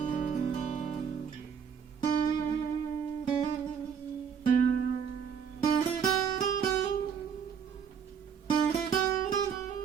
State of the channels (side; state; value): left; quieter; 7.1 dB